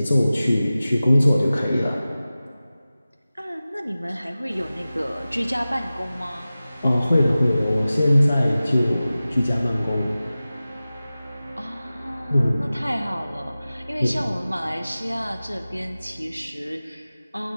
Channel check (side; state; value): both; inverted; correlation -0.96